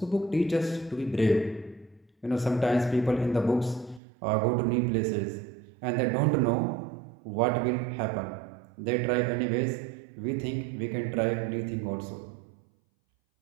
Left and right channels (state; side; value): drops out; left; at 4.0 s